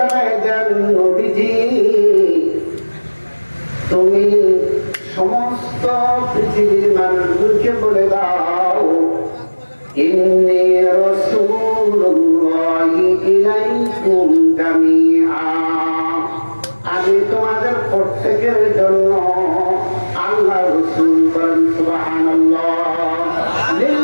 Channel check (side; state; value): both; inverted; correlation -1.00